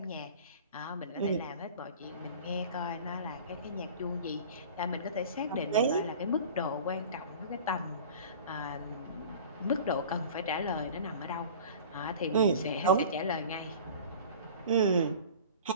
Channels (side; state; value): both; inverted; correlation -0.40